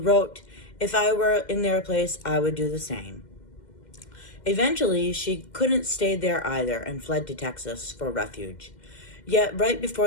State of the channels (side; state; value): right; late; 2.1 ms